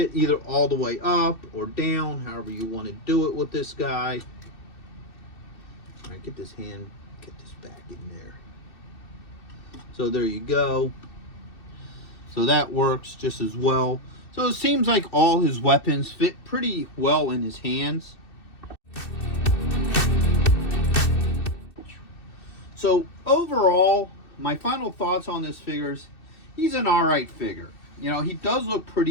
either all the way up or down, however you want to do it with this guy. All right, get this back in there. So there you go. So that works just as well. So it seems like all his weapons fit pretty well in his hands. So overall, my final thoughts on this figure is he's an alright figure. You know, he does look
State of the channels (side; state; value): right; late; 2.6 ms